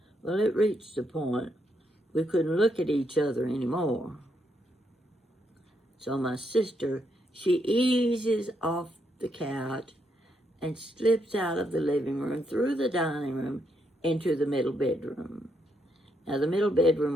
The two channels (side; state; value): both; normal; correlation 0.78